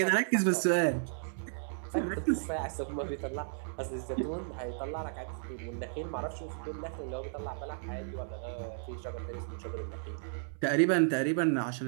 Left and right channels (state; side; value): silent; left; 55 dB below the other